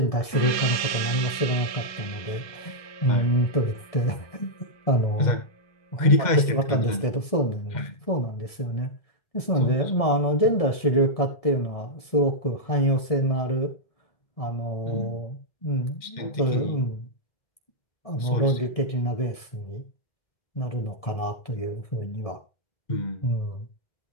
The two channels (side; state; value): right; late; 1.7 ms